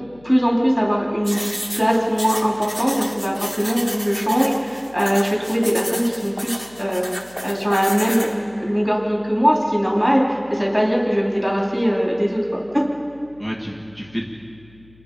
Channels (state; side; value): noise; left; hum, 27 dB below the sound